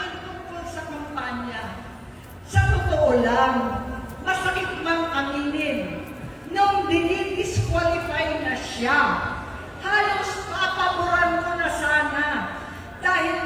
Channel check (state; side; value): identical; both; correlation 1.00